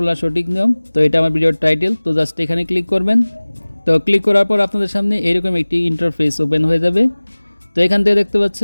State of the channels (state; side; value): inverted; both; correlation -1.00